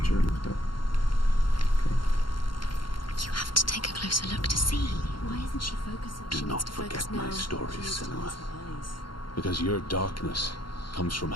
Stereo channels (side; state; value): right; late; 0.72 ms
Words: lift up. Okay. You have to take a closer look to see. Why isn't she focusing? Do not forget my stories, Senua. Because your darkness comes from